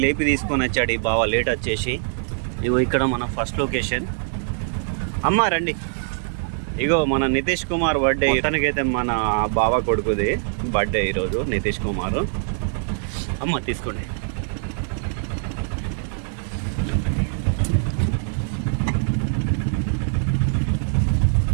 లేపి తీసుకొని వచ్చాడు ఈ బావ లేట్ వచ్చేసి. ఇగో ఇక్కడ మన ఫస్ట్ లొకేషన్. అమ్మ రండి. ఇగో మన నితీష్ కుమార్ బర్త్డే. తనకైతే మన బావ కొడుకుది బర్త్డే ఈరోజు నితీష్ కుమార్. అమ్మ తీసుకోండి.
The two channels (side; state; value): left; silent; digital silence